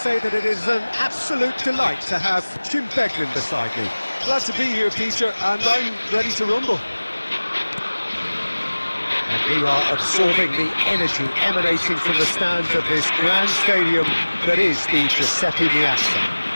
that it is an absolute delight to have Jim Beglin beside me. Glad to be here, Peter, and I'm ready to rumble. And we are absorbing the energy emanating from the stands of this grand stadium that is the Giuseppe Meazza.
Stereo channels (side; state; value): both; inverted; correlation -1.00